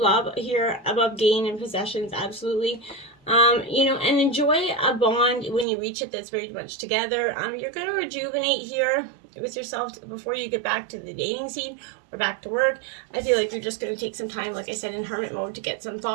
love here above gain and possessions, absolutely. You know, and enjoy a bond when you reach it that's very much together. You're going to rejuvenate here with yourself before you get back to the dating scene or back to work. I feel like you're just going to take some time, like I said, in hermit mode to get some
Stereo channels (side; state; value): left; drops out; at 5.7 s